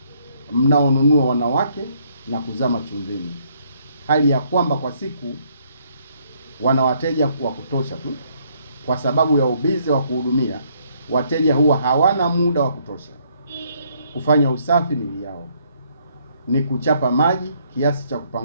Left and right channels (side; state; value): both; inverted; correlation -0.68